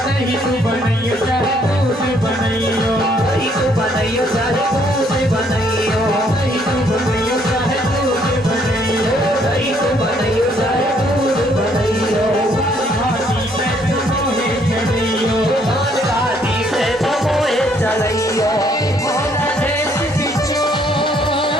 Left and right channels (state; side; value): normal; both; correlation 0.67